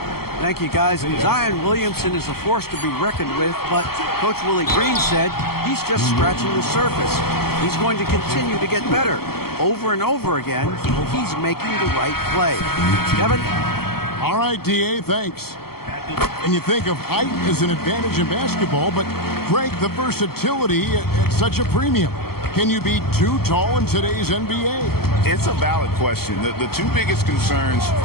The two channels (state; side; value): late; right; 0.95 ms